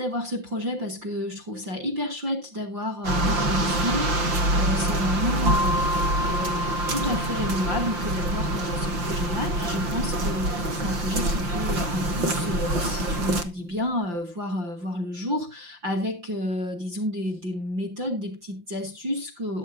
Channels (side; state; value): left; late; 5.7 ms